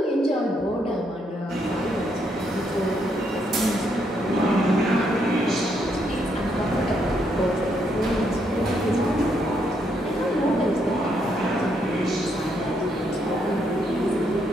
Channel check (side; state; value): both; normal; correlation 0.75